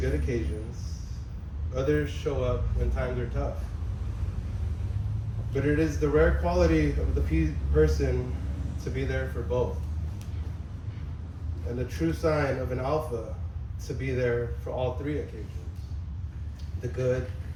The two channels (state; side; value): identical; both; correlation 1.00